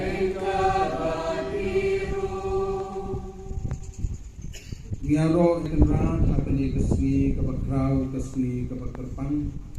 batiru. Ngaro ikenran apani kesni kabakrau kesni kabakterpang.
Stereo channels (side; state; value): both; identical; correlation 1.00